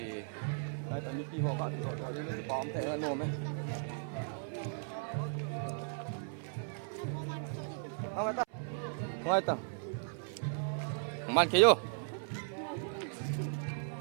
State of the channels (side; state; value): left; silent; 53 dB below the other